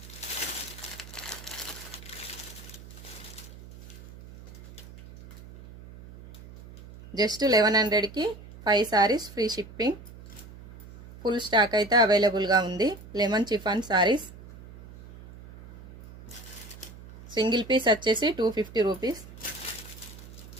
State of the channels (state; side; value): noise; right; hum, 17 dB below the sound